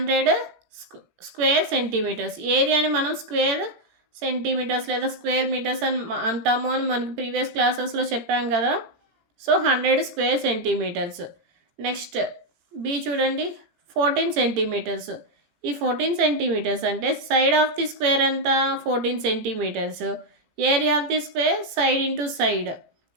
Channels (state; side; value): late; left; 18 ms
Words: స్క్వేర్ సెంటీమీటర్స్. ఏరియాని మనం స్క్వేర్ సెంటీమీటర్స్ లేదా స్క్వేర్ మీటర్స్ అని అంటాము అని మనకి ప్రీవియస్ క్లాసెస్లో చెప్పాం కదా. So 100 square centimetres. Next B చూడండి, 14 సెంటీమీటర్స్. ఈ 14 సెంటీమీటర్స్ అంటే సైడ్ ఆఫ్ ది స్క్వేర్ ఎంత? 14 centimetres. Area of the square side into side.